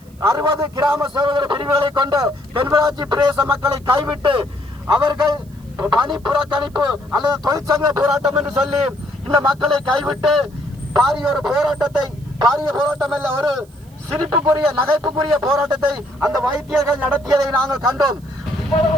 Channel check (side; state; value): right; noise; hiss, 30 dB below the sound